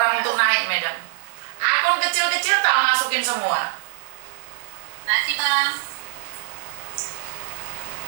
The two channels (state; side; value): silent; left; digital silence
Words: untuk naik, madam. Akun kecil-kecil tak masukin semua. Nanti bang.